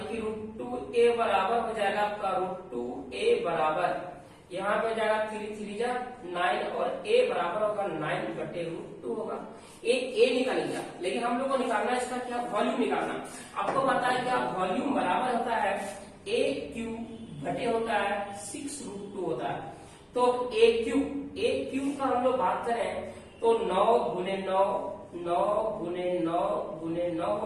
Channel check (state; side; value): identical; both; correlation 1.00